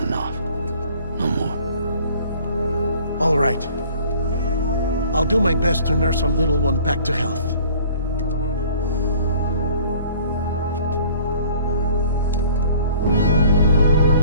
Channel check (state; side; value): inverted; both; correlation -0.51